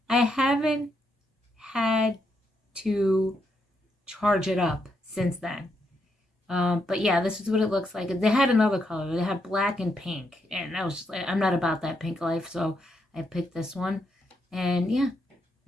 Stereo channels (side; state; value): both; normal; correlation 0.79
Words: I haven't had to charge it up since then. But yeah, this is what it looks like. They had another color. They had black and pink, and I was just like, I'm not about that pink life, so I picked this one. And yeah,